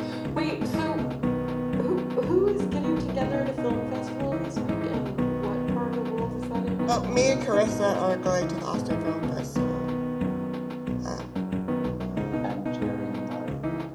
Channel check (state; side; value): identical; both; correlation 1.00